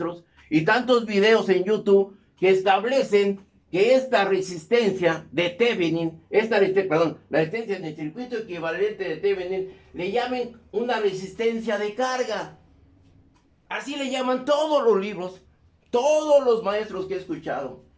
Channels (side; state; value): both; identical; correlation 1.00